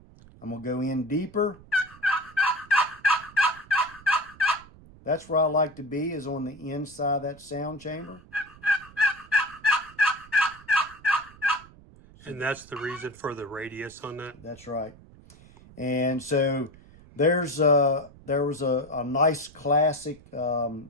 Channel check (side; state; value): right; noise; rumble, 23 dB below the sound